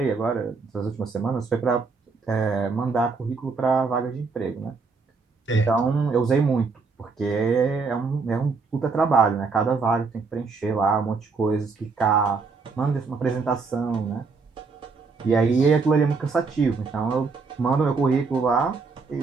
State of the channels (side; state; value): left; quieter; 4.6 dB